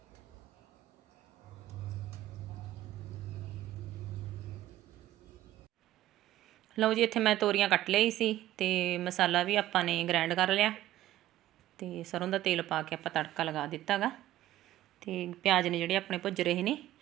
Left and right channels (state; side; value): quieter; left; 14.2 dB